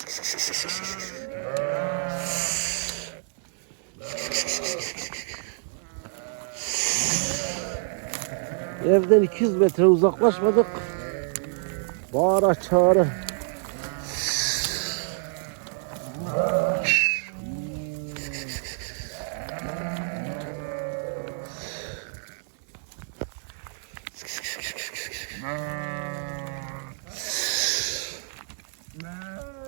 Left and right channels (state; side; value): silent; left; 60 dB below the other